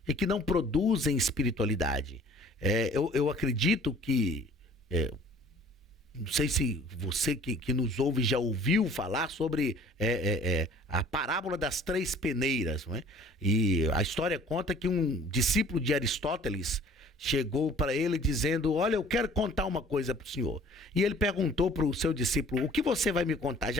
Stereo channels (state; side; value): normal; both; correlation 0.52